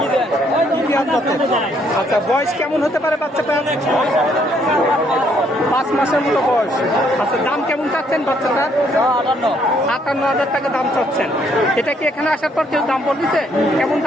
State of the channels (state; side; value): normal; both; correlation 0.68